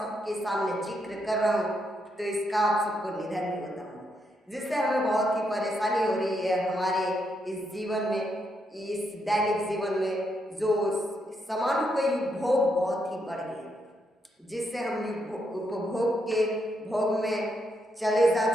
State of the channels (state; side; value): normal; both; correlation 0.79